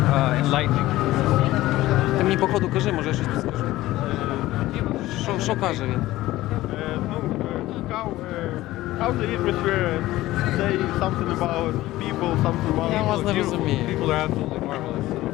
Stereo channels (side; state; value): right; quieter; 16.6 dB